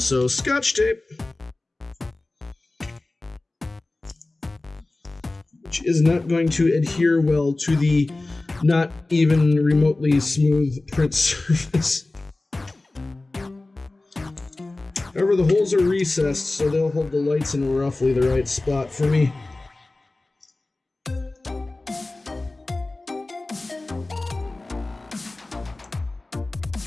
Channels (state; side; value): quieter; right; 3.0 dB